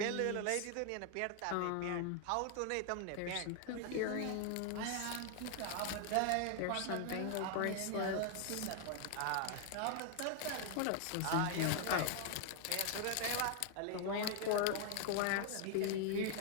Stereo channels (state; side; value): different; both; correlation 0.00